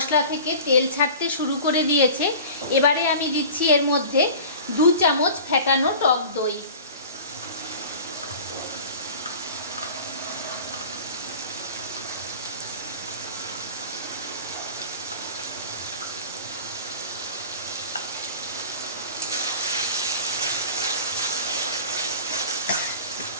থেকে তেল ছাড়তে শুরু করে দিয়েছে। এবারে আমি দিচ্ছি এর মধ্যে 2 চামচ ফেটানো টক দই।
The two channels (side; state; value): both; inverted; correlation -0.39